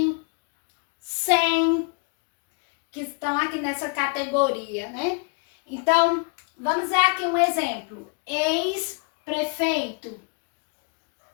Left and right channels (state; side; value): quieter; right; 35.5 dB